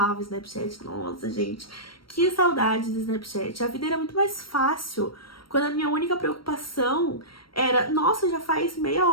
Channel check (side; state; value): right; late; 0.74 ms